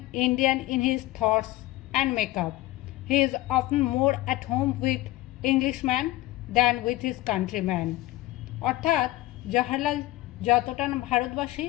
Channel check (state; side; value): quieter; right; 17.2 dB